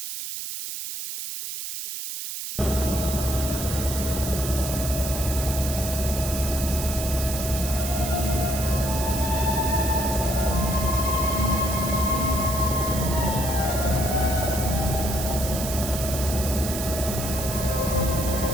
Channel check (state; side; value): noise; right; hiss, 6 dB below the sound